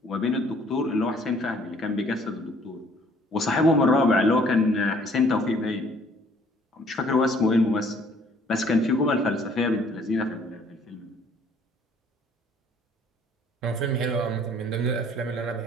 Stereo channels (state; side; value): normal; both; correlation 0.59